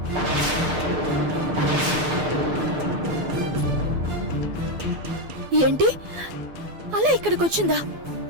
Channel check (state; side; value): late; left; 12 ms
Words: ఏంటి అలా ఇక్కడికి వచ్చిందా?